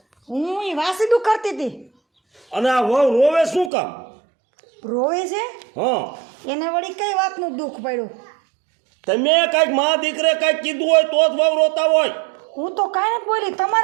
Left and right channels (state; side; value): drops out; left; at 3.7 s